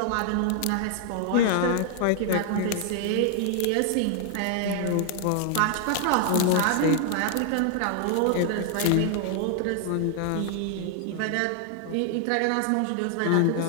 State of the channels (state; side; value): different; both; correlation 0.00